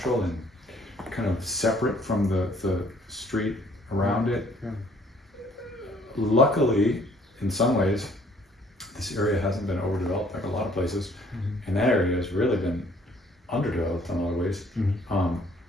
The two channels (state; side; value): normal; both; correlation 0.60